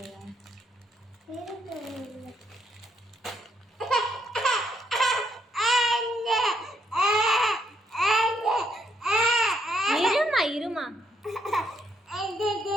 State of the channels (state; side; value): normal; both; correlation 0.74